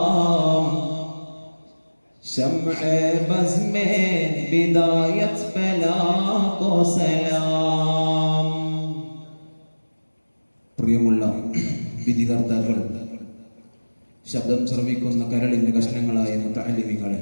शम्अ बज़ में बिदायत बला को सलाम. പ്രിയമുള്ള വിധികർത്താക്കൾ, ശബ്ദം ശ്രവിക്കുന്ന കരളിന്റെ കഷ്ണങ്ങളായ മുതഅല്ലിമീങ്ങളെ,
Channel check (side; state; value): both; inverted; correlation -1.00